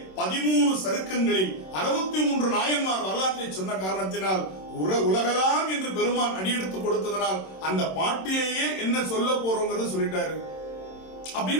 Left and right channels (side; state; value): right; late; 27 ms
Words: 13 சருக்கங்களில் 63 நாயன்மார் வரலாற்றை சொன்ன காரணத்தினால் உலகலாம் என்று பெருமான் அடியெடுத்து கொடுத்ததனால் அந்த பாட்டிலேயே என்ன சொல்ல போறோங்கிறத சொல்லிட்டாரு